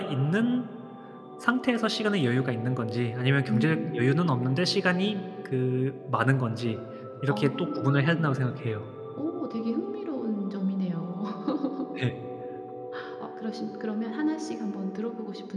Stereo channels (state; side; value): identical; both; correlation 1.00